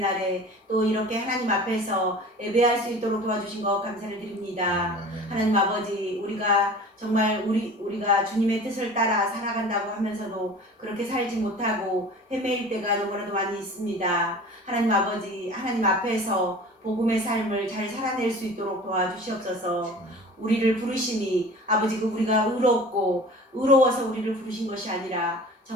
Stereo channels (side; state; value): both; normal; correlation 0.41